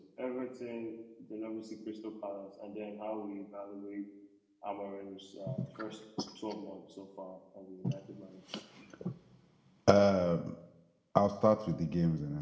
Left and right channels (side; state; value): both; identical; correlation 1.00